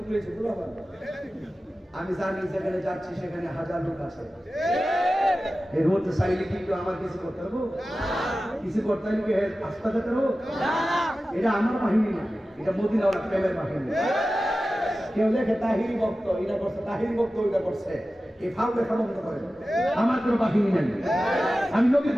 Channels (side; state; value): both; normal; correlation 0.95